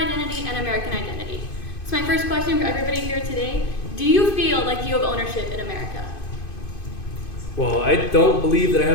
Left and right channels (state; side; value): late; right; 2.5 ms